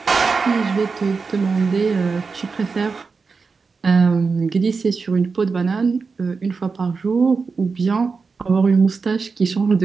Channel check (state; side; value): quieter; left; 4.7 dB